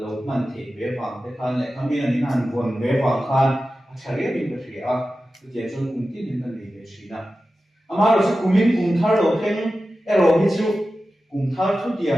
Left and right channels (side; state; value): both; normal; correlation 0.94